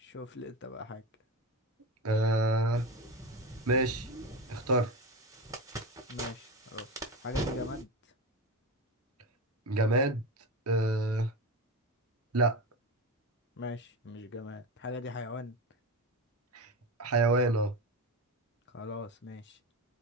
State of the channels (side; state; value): both; normal; correlation 0.22